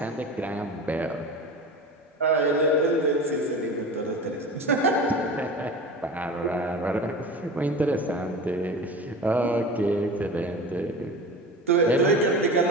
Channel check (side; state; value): both; normal; correlation 0.32